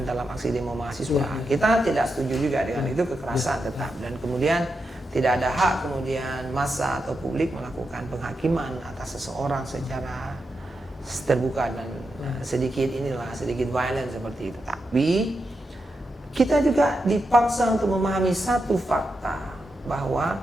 dalam aksi demo mahasiswa. Kita tidak setuju juga dengan itu, kekerasan tetap, dan kemudian tidak ada hak kemudian massa atau publik melakukan penghakiman atas seseorang secara terbuka dan sedikit violent seperti itu. Tapi kita juga dipaksa untuk memahami satu fakta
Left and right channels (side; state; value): both; normal; correlation 0.87